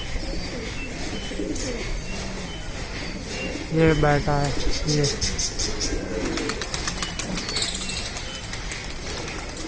ये बैठा है ये,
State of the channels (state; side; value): identical; both; correlation 1.00